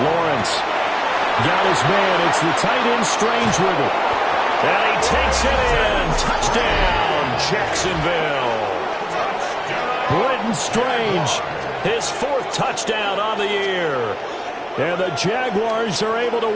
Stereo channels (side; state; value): both; identical; correlation 1.00